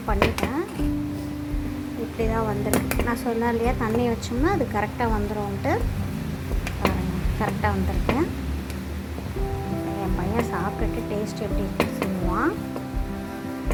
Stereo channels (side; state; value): both; identical; correlation 1.00